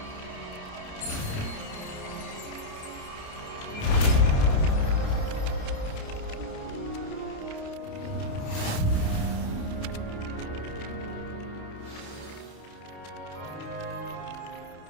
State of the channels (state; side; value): late; right; 29 ms